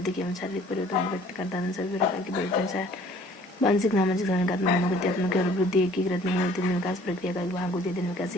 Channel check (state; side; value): normal; both; correlation 0.54